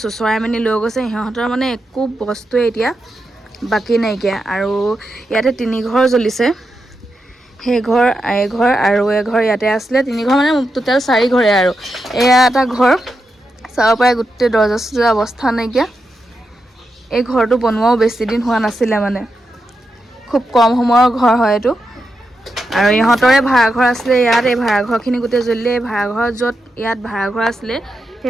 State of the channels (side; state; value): both; normal; correlation 0.87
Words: চুচৰাই মেলি লৈ গৈছে সিহঁতৰ মানে একো বস্তুৱে এতিয়া বাকী নাইকিয়া আৰু ইয়াতে 3 ঘৰ জ্বলিছে সেই ঘৰ এঘৰ আৰু এঘৰ ইয়াতে আছিলে 3 ঘৰ মানে টোটেল 4 ঘৰে আৰু এয়া এটা ঘৰ চাব পাৰে গোটেই দৰ্জা চৰ্জা অৱস্থা নাইকিয়া এই ঘৰটো বনোৱাও বেছি দিন হোৱা নাছিলে মানে খুব কম সময়ৰ ঘৰ হয় এইটো আৰু ইহঁতৰে ভাড়াঘৰ আছিলে ইয়াত এই ভাড়াঘৰখিনি গোটেই জ্বলিলে এই ভাড়াঘৰ য'ত ইয়াত ভাড়াঘৰ আছিলে